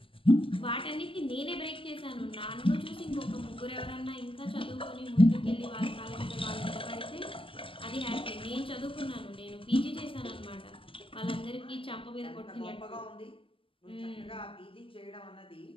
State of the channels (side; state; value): right; late; 0.25 ms